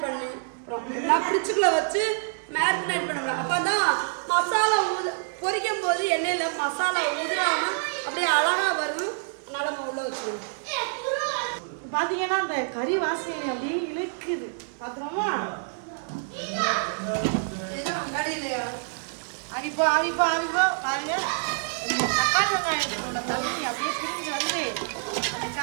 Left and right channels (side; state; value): left; silent; 60 dB below the other